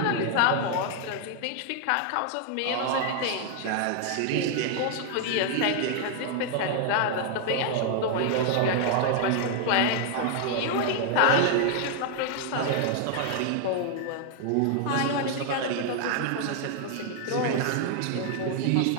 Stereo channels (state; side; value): different; both; correlation 0.00